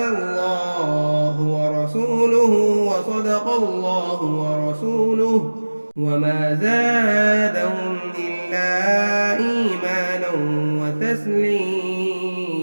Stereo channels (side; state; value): both; inverted; correlation -1.00